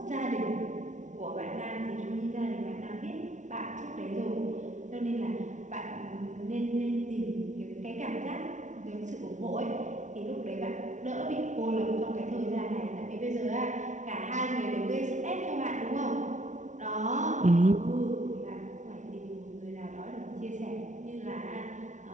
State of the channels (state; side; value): late; left; 0.36 ms